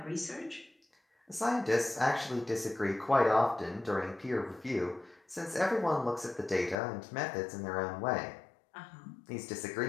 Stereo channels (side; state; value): right; drops out; at 6.8 s